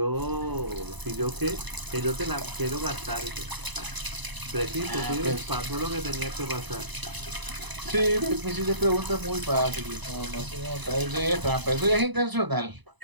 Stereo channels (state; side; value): late; left; 1.0 ms